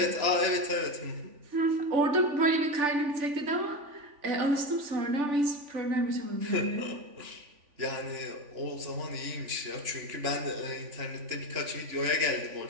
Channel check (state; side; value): late; left; 3.5 ms